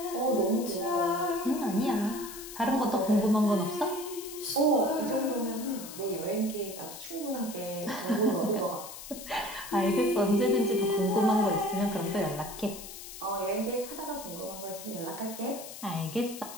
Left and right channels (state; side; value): noise; left; hiss, 12 dB below the sound